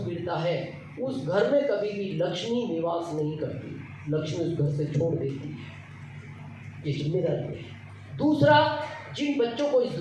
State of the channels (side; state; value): both; identical; correlation 1.00